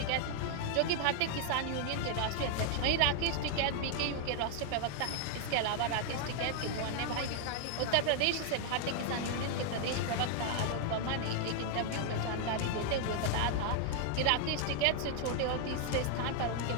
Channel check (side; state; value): both; different; correlation 0.00